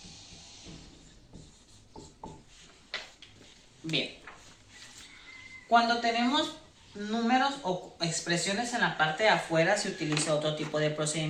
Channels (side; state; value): both; identical; correlation 1.00